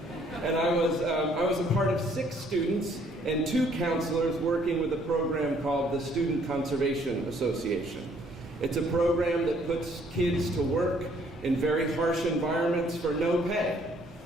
And I was a part of 6 students and 2 counselors working with a program called the Student Conservation Association. It's a program that puts kids to work in very harsh environments for no pay,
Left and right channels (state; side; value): normal; both; correlation 0.63